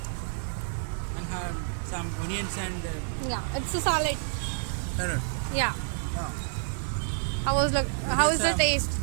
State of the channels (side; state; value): left; silent; digital silence